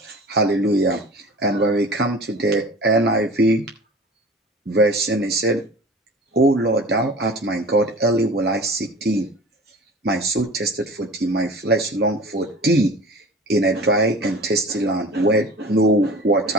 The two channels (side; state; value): both; normal; correlation 0.40